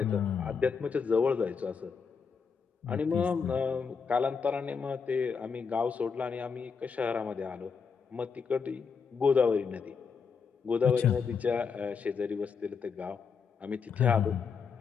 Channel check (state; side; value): quieter; right; 5.8 dB